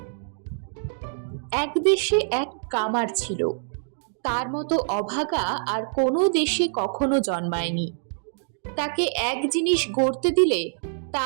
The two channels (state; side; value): silent; left; digital silence